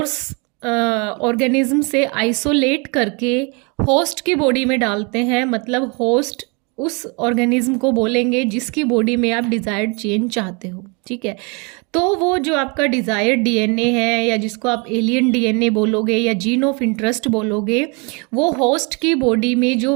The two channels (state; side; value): quieter; left; 32.0 dB